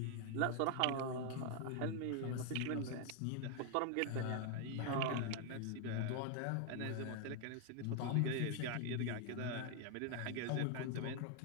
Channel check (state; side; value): different; both; correlation 0.00